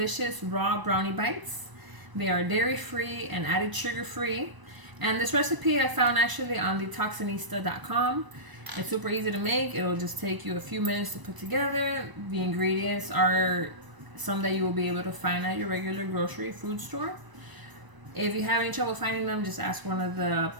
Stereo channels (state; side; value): late; left; 1.0 ms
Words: raw brownie bites. They are dairy free and added sugar free, and this recipe I found actually on detoxinista.com. It's super easy to make. It'll just take you a few minutes to put together. The ingredients are some that you will be able to find at your regular grocery food store. If you have any trouble finding them, just ask one of the